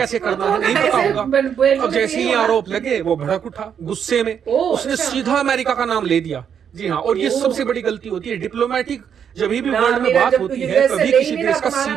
करना है नहीं पता होगा। अब जैसे ही आरोप लगे वो भड़क उठा गुस्से में, उसने सीधा अमेरिका का नाम ले दिया। जी हाँ, और ये सबसे बड़ी गलती होती है डिप्लोमेटिक, जब भी वर्ल्ड में बात होती है कभी किसी देश का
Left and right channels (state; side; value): quieter; left; 8.0 dB